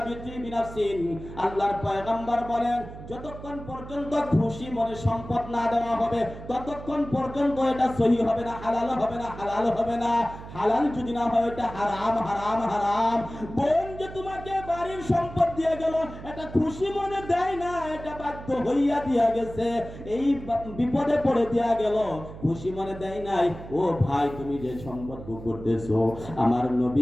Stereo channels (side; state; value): right; noise; hum, 13 dB below the sound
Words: বিতিবি নাফসিন। আল্লাহর পয়গম্বর বলেন, যতক্ষণ পর্যন্ত খুশি মনে সম্পদ না দেওয়া হবে, ততক্ষণ পর্যন্ত এটা সহিহ হবে না, হালাল হবে না, হালাল হবে না। হালাল যদি না হয়, এটা হারাম, হারাম, হারাম। বোন যে তোমাকে বাড়ির সম্পদ দিয়ে গেল, এটা খুশি মনে দেয় না, এটা বাধ্য হইয়া দিয়া গেছে, এই বিপদে পড়ে দিয়া গেল, খুশি মনে দেয় নাই। ও ভাই, তুমি যে সম্পদ ভোগ করতেছো, আমার